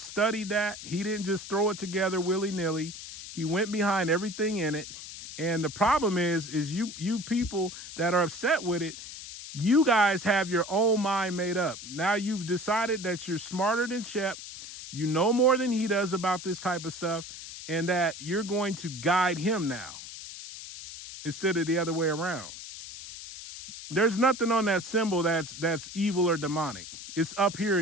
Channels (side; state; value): left; noise; hiss, 12 dB below the sound